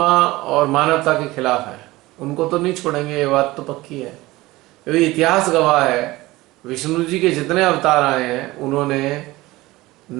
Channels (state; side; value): quieter; left; 19.3 dB